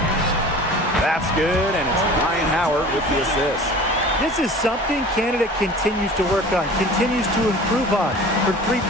That's good, and it's Ryan Howard with the assist. This is something Canada continues to work on, continues to improve on. Her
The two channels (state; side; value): normal; both; correlation 0.41